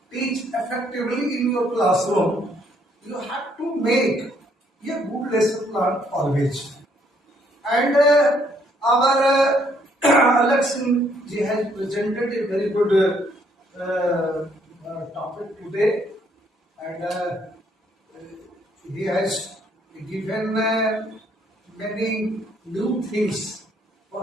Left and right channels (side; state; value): both; normal; correlation 0.68